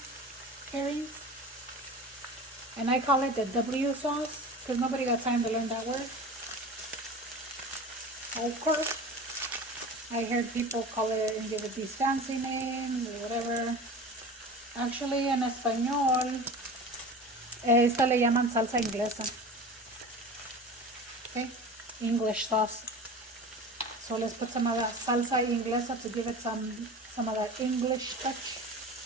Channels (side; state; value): both; normal; correlation 0.34